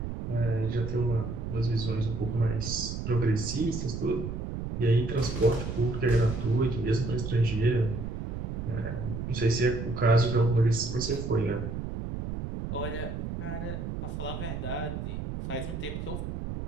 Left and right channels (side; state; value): right; noise; rumble, 5 dB below the sound